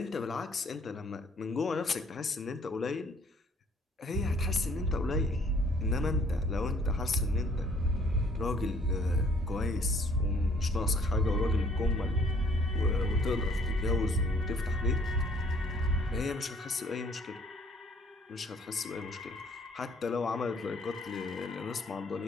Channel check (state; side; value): normal; both; correlation 0.60